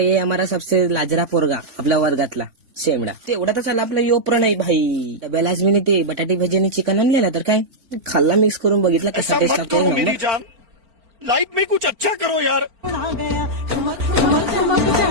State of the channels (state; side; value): late; left; 4.4 ms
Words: हमारा सबसे लाजरा पोरगा आपल्या वर्गातला शेमडा. तेवढा तर चालला आपला योप्र नाही भाई. डब्याला आज मी ते बटाटे भजी आणि चिकन आणलेला तर काय खाल्ला, मिक्स करून बघितला कसा टेस्ट लागतो. लाइफ में कुछ अच्छा करो यार.